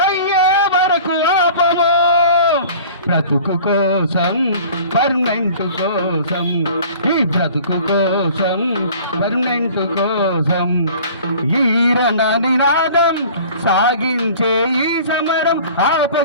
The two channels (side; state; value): both; inverted; correlation -0.45